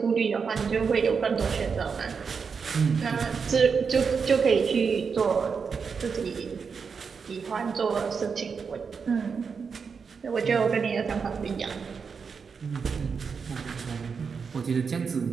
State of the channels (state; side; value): quieter; left; 5.7 dB